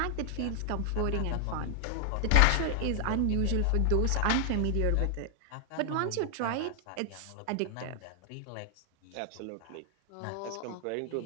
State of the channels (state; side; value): different; both; correlation 0.00